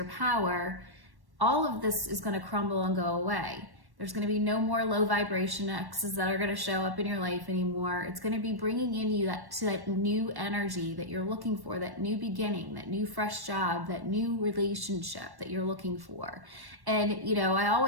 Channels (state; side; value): late; left; 1.1 ms